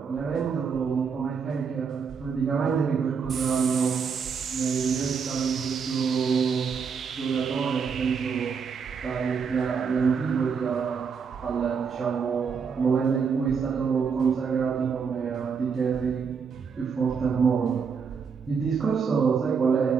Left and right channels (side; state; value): left; quieter; 6.0 dB